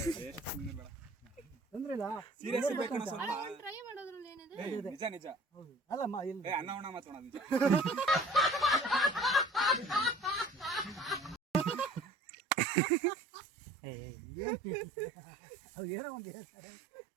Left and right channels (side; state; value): left; drops out; at 12.1 s